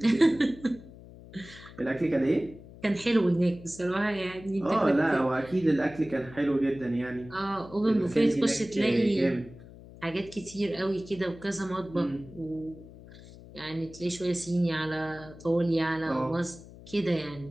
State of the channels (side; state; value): left; noise; hum, 18 dB below the sound